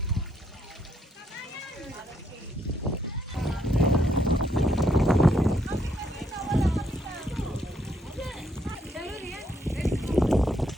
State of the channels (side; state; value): both; normal; correlation 0.74